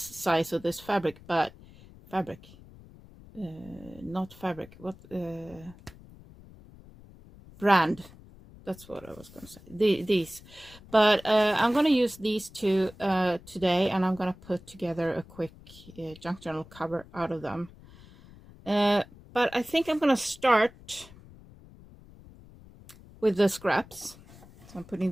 of this fabric, but fabric, not fabric, what, brand, that's what I was gonna say, these, but I'm gonna use these 2 today, and I'm gonna put together a quick junk journal cover out of them, but I think I'm gonna start with the scraps. So I'm putting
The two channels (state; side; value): noise; left; rumble, 21 dB below the sound